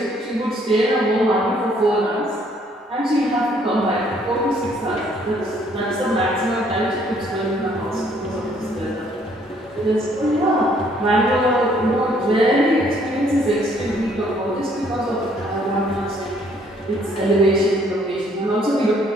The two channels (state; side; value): normal; both; correlation 0.64